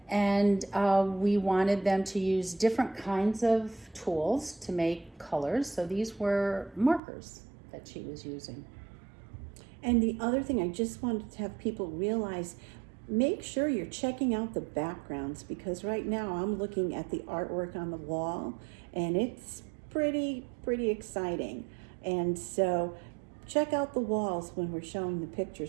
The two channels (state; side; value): drops out; left; at 7.0 s